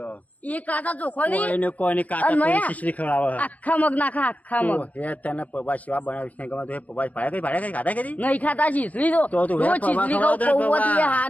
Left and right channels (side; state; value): right; late; 0.074 ms